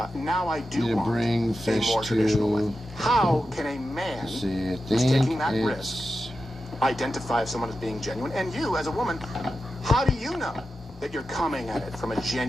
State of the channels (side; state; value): both; normal; correlation 0.91